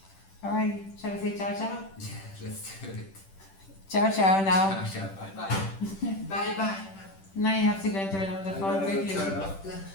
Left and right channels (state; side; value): late; right; 10 ms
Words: alright, shall we say ciao ciao? Yeah, let's do it. Ciao ciao now. Ciao, ciao, bye bye. Bye bye. Now you have to go and turn off the phone quickly. Turn off the